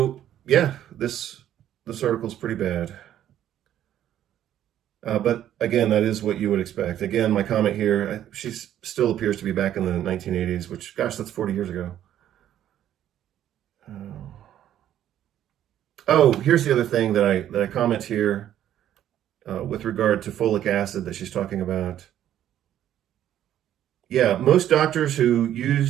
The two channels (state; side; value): quieter; left; 11.3 dB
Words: yeah, this article is pretty bad. But again, that is what you would expect. Again, my comment here, she still appears to be back in the 1980s, which, gosh, that's 40 years ago. Oh, here's the other thing that I comment here with regard to folic acid that she's talking about. Yeah, most doctors who